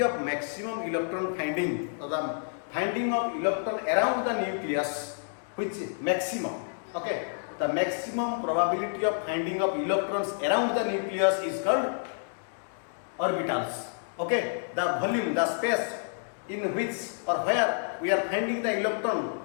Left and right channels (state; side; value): silent; right; digital silence